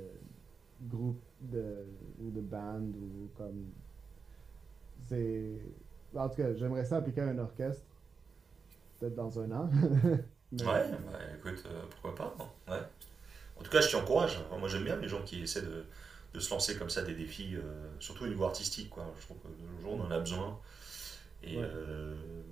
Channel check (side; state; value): left; quieter; 5.3 dB